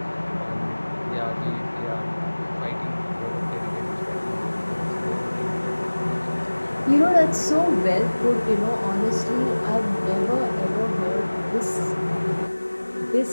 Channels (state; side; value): inverted; both; correlation -1.00